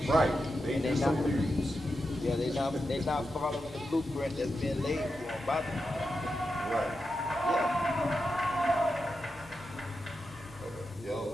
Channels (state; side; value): normal; both; correlation 0.88